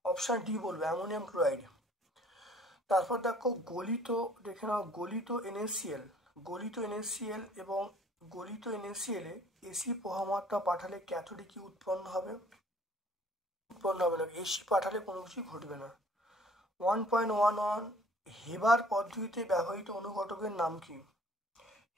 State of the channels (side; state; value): both; normal; correlation 0.55